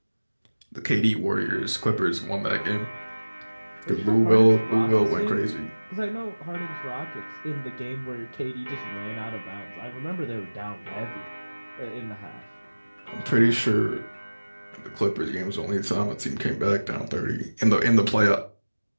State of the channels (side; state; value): both; inverted; correlation -1.00